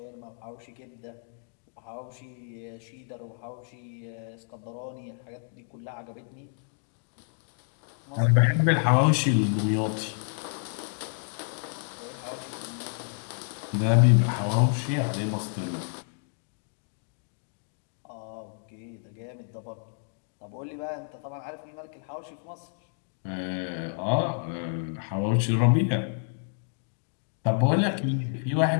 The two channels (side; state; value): right; silent; digital silence